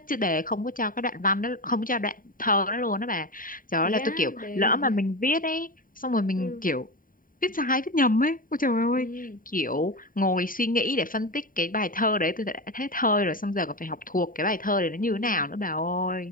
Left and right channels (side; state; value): right; late; 0.41 ms